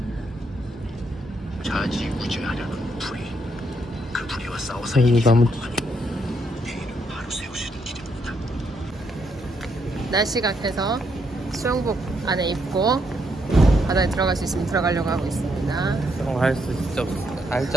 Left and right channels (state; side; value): normal; both; correlation 0.76